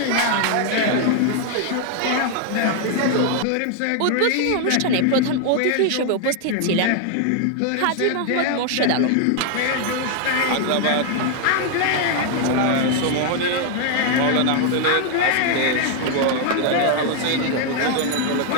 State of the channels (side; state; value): both; different; correlation 0.00